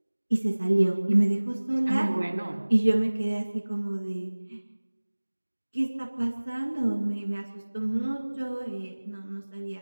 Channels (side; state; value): both; inverted; correlation -1.00